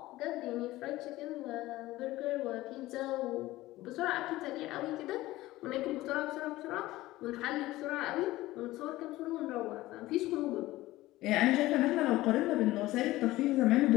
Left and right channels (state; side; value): quieter; right; 17.4 dB